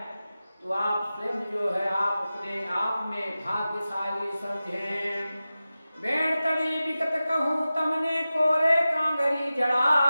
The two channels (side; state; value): both; inverted; correlation -0.95